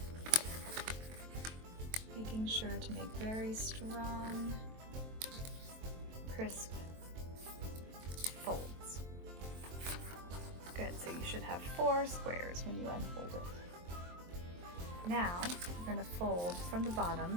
making sure to make very strong, crisp folds. Good, so you should have 4 squares when you unfold it. Now you're going to fold from the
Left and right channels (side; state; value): left; late; 23 ms